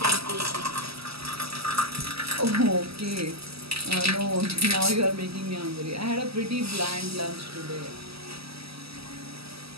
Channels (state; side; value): late; left; 0.76 ms